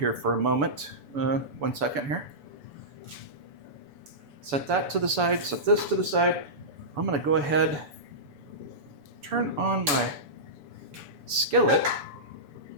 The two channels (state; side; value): late; left; 6.9 ms